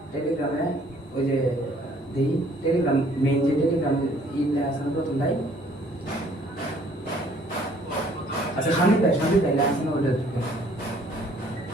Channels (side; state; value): both; normal; correlation 0.59